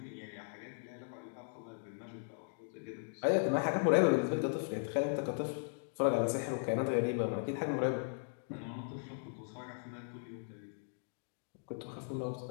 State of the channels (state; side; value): silent; right; digital silence